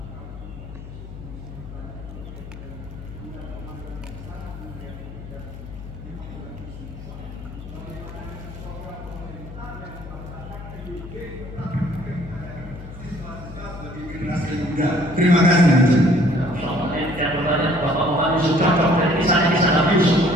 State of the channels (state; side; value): noise; left; hum, 12 dB below the sound